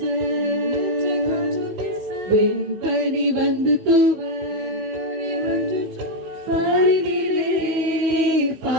வெண்பனி வந்து தூவ பாரினிலே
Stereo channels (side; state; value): left; late; 15 ms